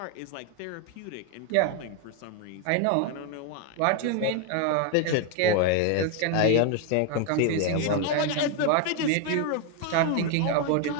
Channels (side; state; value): both; different; correlation 0.01